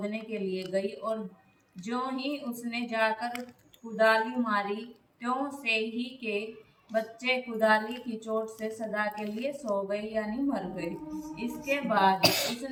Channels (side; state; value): both; identical; correlation 1.00